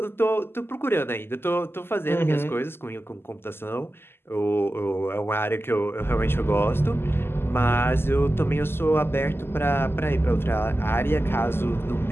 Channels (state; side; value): late; right; 0.11 ms